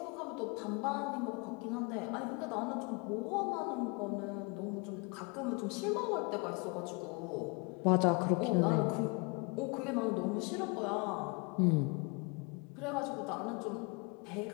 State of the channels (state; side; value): quieter; right; 30.7 dB